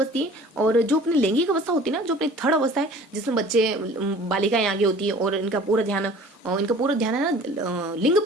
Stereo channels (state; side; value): normal; both; correlation 0.46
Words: है। और जो अपनी लैंगिक अवस्था होती है ना, जो अपनी थर्ड अवस्था है, जिसमें बच्चे बालिकाएं आगे होती है और इनका पूरा ध्यान है ना लिंग